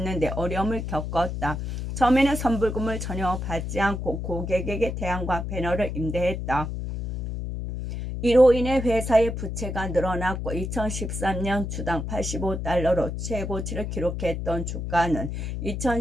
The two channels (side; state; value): left; noise; hum, 4 dB below the sound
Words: 어려움을 겪었다. 처음에는 선불금을 전혀 받지 않고 고객에게 태양광 패널을 임대했다. 이로 인해 회사의 부채가 늘어났고 2013년 주당 $85로 최고치를 기록했던 주가는